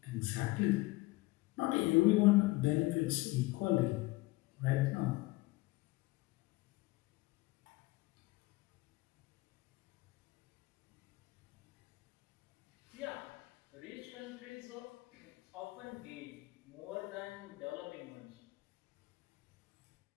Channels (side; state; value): right; quieter; 21.5 dB